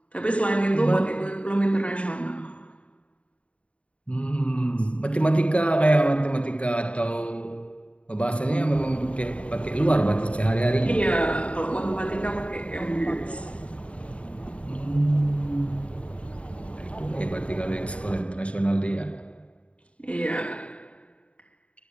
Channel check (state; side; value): late; right; 0.062 ms